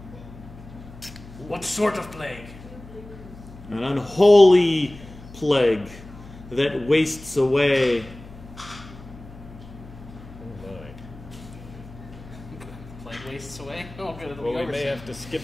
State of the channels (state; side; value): noise; left; hum, 17 dB below the sound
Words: What sort of plague? An unholy plague that wastes away." Plague wastes away? Oh, good. It'll well, be we over may soon. have to